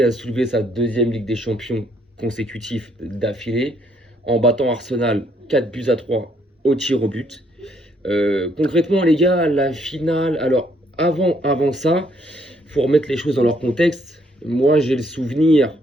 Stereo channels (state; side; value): normal; both; correlation 0.69